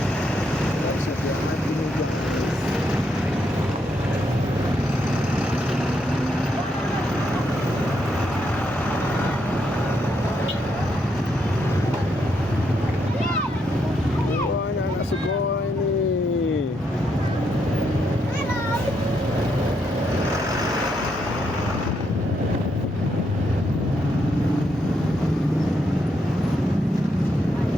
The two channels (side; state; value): both; normal; correlation 0.78